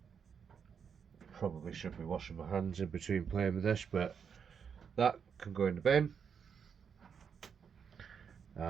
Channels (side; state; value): left; quieter; 6.9 dB